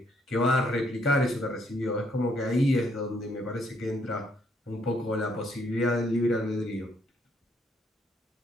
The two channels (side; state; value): both; normal; correlation 0.70